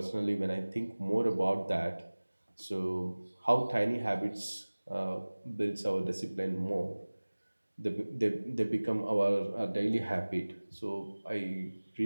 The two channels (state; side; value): inverted; both; correlation -1.00